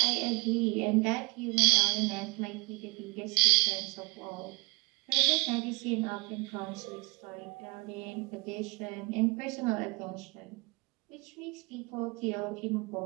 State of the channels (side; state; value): left; quieter; 27.8 dB